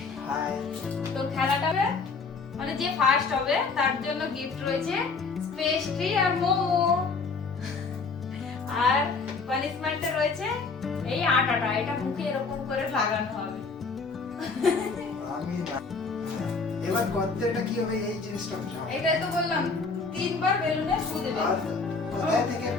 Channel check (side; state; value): right; quieter; 4.4 dB